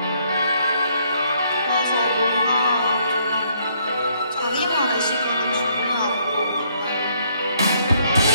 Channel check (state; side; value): inverted; both; correlation -0.69